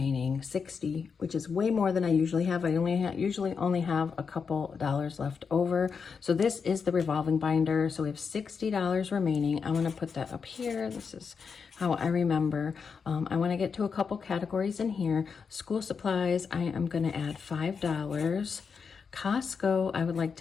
60, which is way more than I usually have. I usually only have a couple dollars left over. So this is the revolving binder. So we have $60 remaining. I'm gonna put that up here. This is how I remember. I wanna get to a couple categories in here. School supplies, I am gonna add $5. Costco, I would like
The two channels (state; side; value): quieter; right; 5.8 dB